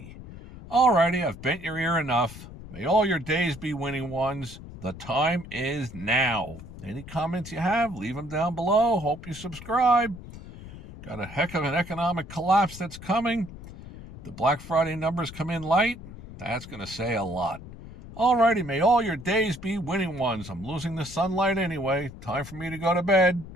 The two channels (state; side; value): noise; left; rumble, 14 dB below the sound